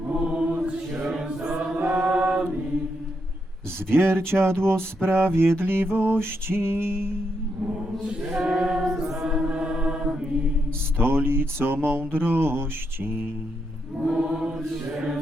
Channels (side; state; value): both; normal; correlation 0.81